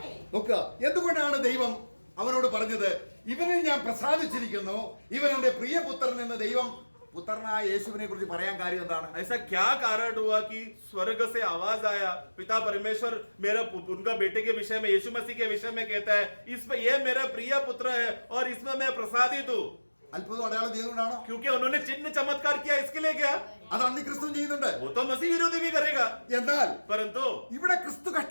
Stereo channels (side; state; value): both; inverted; correlation -1.00